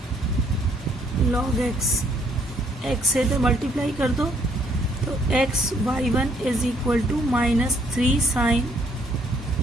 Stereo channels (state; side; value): normal; both; correlation 0.67